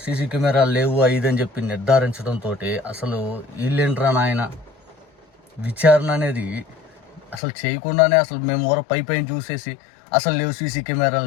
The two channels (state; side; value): drops out; right; at 7.4 s